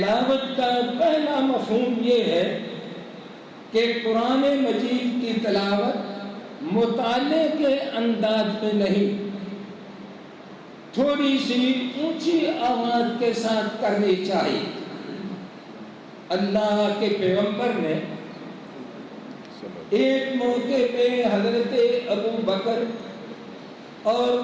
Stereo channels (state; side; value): identical; both; correlation 1.00